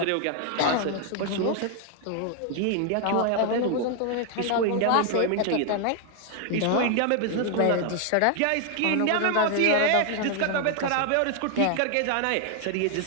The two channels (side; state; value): both; different; correlation 0.00